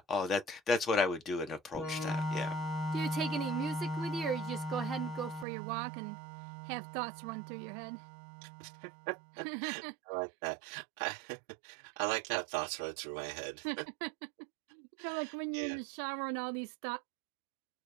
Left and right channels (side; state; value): left; drops out; at 5.5 s